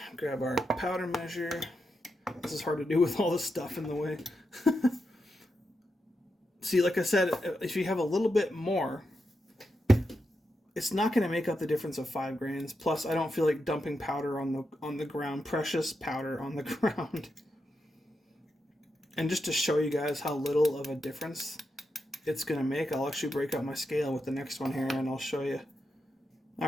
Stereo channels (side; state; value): both; normal; correlation 0.86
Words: Grab our powder measure. This is hard to do with all this stuff in the way. See, like I said, if you have a little bit more, it's not going to make up the difference of 5 grains. Plus, I don't feel like dumping powder on the ground, precious powder on the ground. And just to show you guys how little of a difference it's going to make, I'll actually break out my scale with the next one here, and I'll show you.